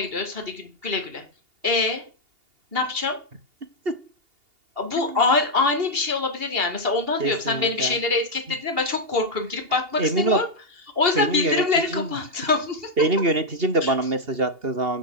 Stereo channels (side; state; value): left; late; 2.8 ms